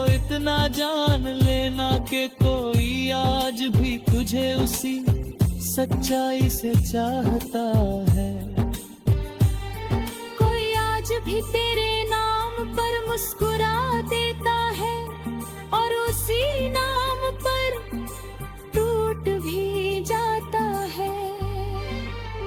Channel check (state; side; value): identical; both; correlation 1.00